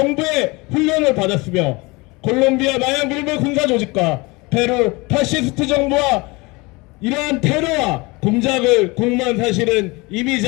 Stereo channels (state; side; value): quieter; right; 25.0 dB